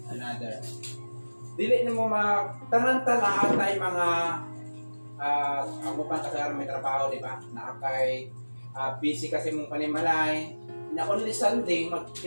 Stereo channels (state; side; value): inverted; both; correlation -1.00